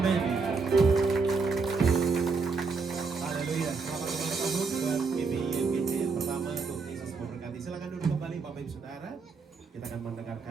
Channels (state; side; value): quieter; left; 4.6 dB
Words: Haleluya. Selamat ulang tahun buat GBI FGC yang pertama. Tuhan Yesus memberkati. Silakan duduk kembali Bapak Ibu Saudara. Kita akan